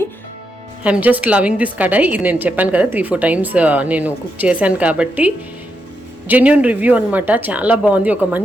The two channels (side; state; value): both; normal; correlation 0.83